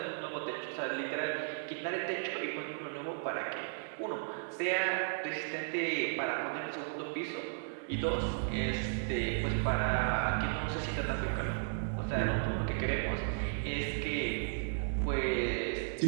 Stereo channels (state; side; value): silent; left; digital silence